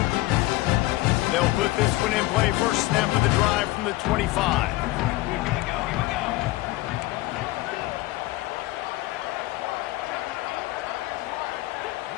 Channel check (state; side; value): quieter; right; 19.1 dB